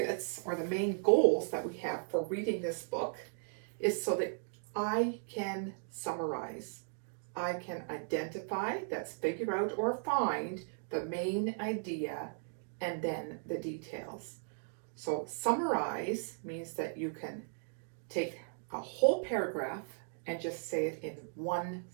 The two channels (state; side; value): silent; left; digital silence